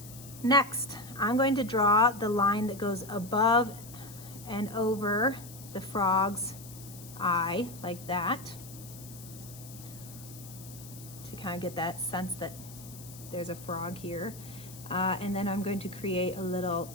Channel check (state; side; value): noise; left; hiss, 16 dB below the sound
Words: next, I'm going to draw the line that goes above and over the frog's eye, like that, to kind of get that sense that there's a frog here. And then I'm going to create a little